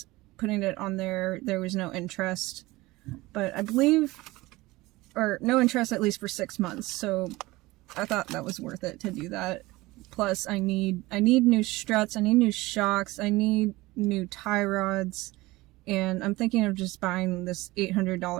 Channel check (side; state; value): left; quieter; 20.3 dB